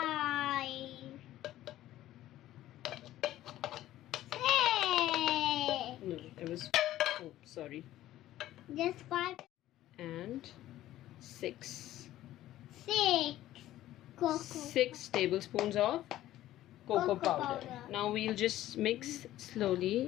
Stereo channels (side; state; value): right; quieter; 14.1 dB